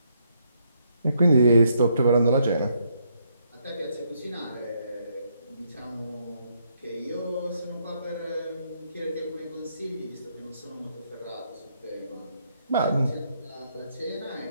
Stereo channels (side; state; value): both; inverted; correlation -0.74